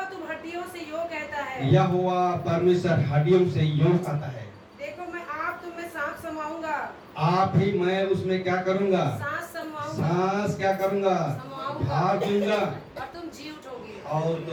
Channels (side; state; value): both; identical; correlation 1.00